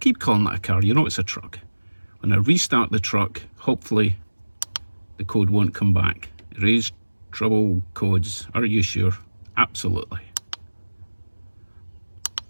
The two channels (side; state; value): both; inverted; correlation -1.00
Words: calling that a car, you know it's a truck. When I restart the truck, hopefully the code won't come back. Erase trouble codes. Are you sure? Absolutely.